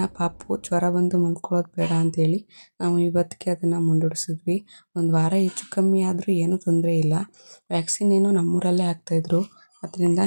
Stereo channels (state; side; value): inverted; both; correlation -1.00